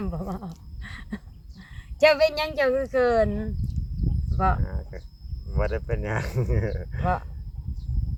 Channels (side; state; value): both; identical; correlation 1.00